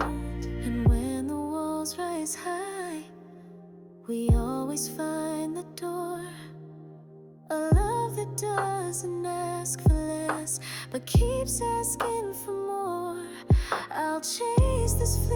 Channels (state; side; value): identical; both; correlation 1.00